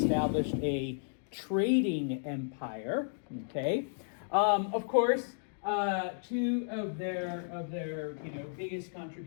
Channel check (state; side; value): silent; right; digital silence